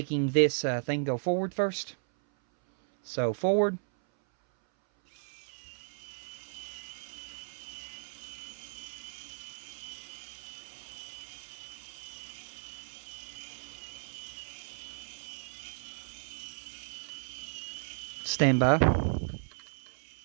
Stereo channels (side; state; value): left; silent; 55 dB below the other